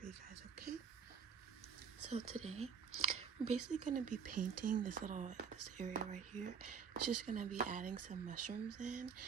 you guys, okay? So today, I'm basically gonna be painting this area right here. It's just gonna be adding some mushrooms in,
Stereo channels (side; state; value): left; quieter; 6.8 dB